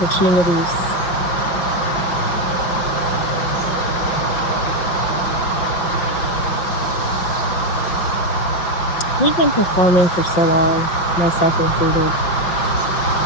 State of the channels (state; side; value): late; right; 5.8 ms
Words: We've been performing for so long, myself included.